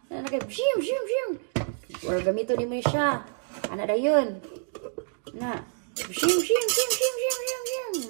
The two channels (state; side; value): silent; left; digital silence